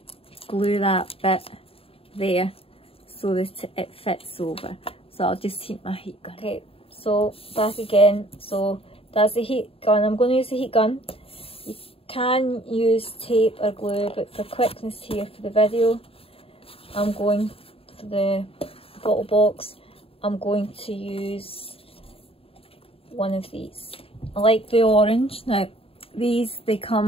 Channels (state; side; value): late; right; 0.27 ms